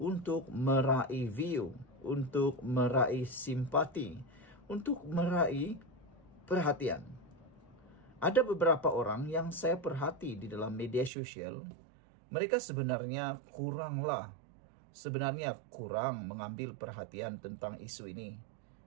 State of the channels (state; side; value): drops out; left; at 11.1 s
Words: meraih view, untuk meraih simpati, untuk meraih perhatian. Ada beberapa orang yang saya perhati di dalam media sosial, mereka sebenarnya kurang mengambil perhatian tentang isu ini.